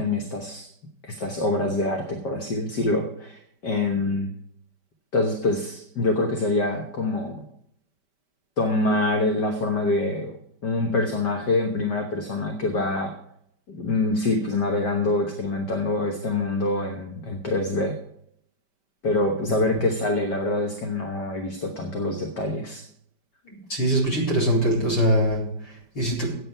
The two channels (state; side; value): late; right; 5.1 ms